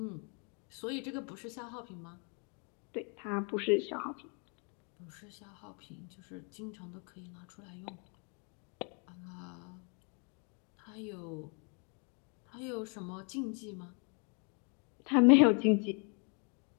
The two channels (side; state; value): right; quieter; 37.3 dB